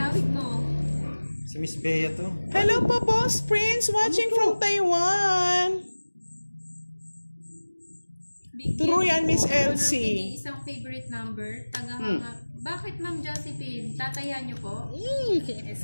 Awit mo. Si Miss Bea to. Hello po, Boss Prince, watching from Taiwan. True yan, Miss Elsie. Isang favorite number. Bakit, Ma'am Josephine? Tataya niyo po?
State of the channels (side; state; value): both; inverted; correlation -1.00